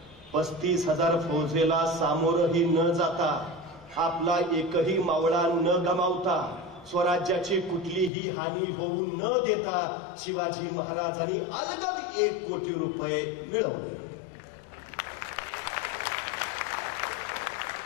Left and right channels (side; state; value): right; drops out; at 8.1 s